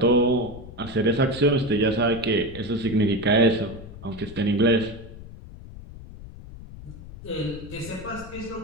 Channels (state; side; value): noise; left; rumble, 15 dB below the sound